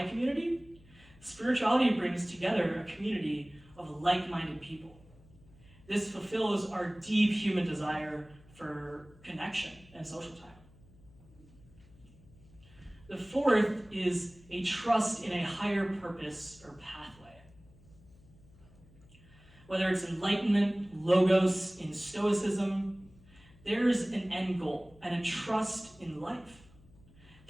community, spirituality brings together a community of like-minded people. This fulfills our deep human desire for connection and social time. The fourth is a trust in a higher purpose or pathway. Whether it's enlightenment, logos, in Stoicism, there's an end goal and a trust in life.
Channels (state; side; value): noise; left; hum, 25 dB below the sound